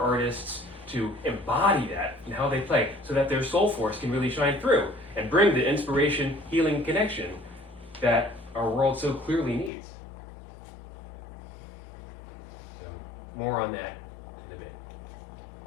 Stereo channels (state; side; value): drops out; right; at 9.7 s